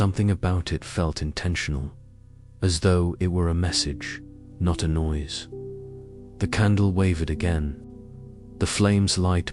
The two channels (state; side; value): identical; both; correlation 1.00